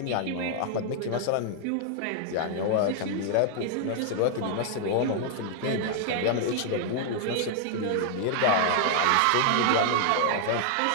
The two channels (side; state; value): both; different; correlation -0.01